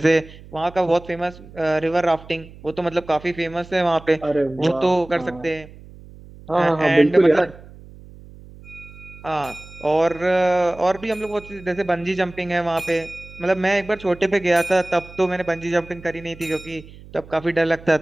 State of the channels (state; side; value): noise; right; hum, 19 dB below the sound